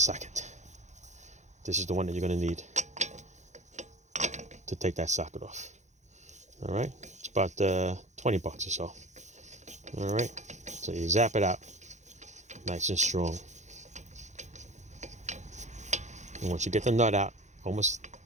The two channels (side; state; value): left; late; 0.34 ms